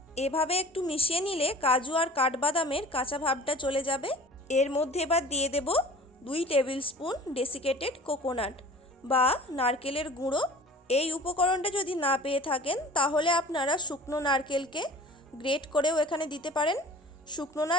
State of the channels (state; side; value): normal; both; correlation 0.44